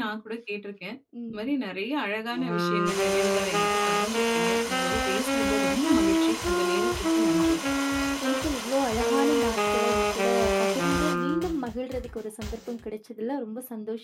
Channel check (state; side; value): identical; both; correlation 1.00